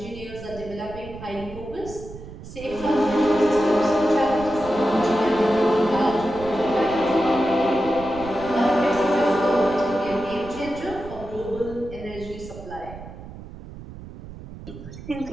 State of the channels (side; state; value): right; noise; rumble, 14 dB below the sound